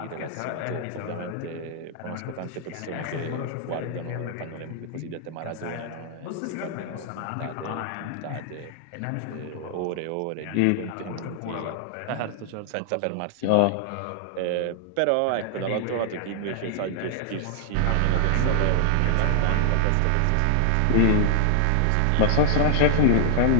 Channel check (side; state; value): both; different; correlation 0.00